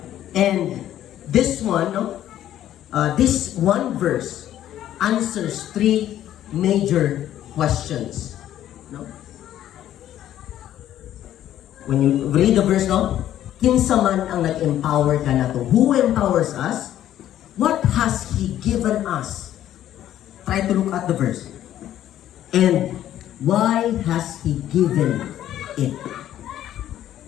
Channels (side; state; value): right; quieter; 12.0 dB